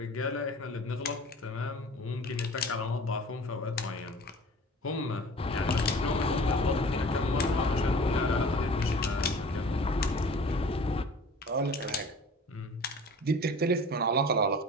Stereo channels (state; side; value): normal; both; correlation 0.43